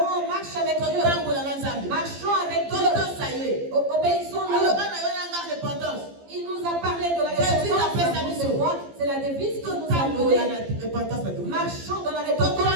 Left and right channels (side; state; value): left; late; 15 ms